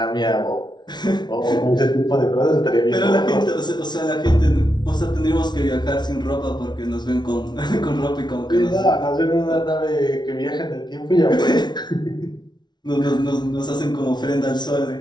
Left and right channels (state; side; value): late; right; 0.20 ms